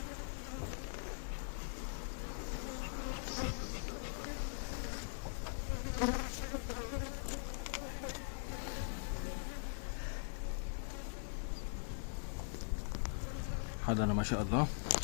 حضانة ما شاء الله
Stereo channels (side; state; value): right; silent; digital silence